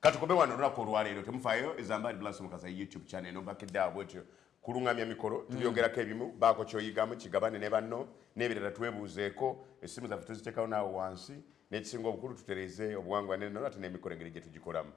katukobe wano olunaku olwaleero temufaayo ezambali blasi mukaza youtube channel nombakeddeawo bwetyo kulungamya mikolo tubyogerako ebimu baako kyoyigamu kigabane ne banno n'ebirala twebuuzeeko essimu zaffe tuziteekawo naawe wansi n'ekisinga obukulu tutereze obuwangwa nenona ate n'emikolo engeri gye tugikolamu.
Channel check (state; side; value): quieter; right; 9.2 dB